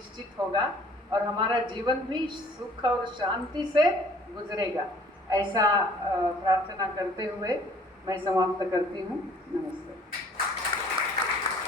होगा और हमारा जीवन भी सुख और शांति से गुजरेगा। ऐसा प्रार्थना करते हुए मैं समाप्त करती हूँ। नमस्ते।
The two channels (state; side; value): normal; both; correlation 0.55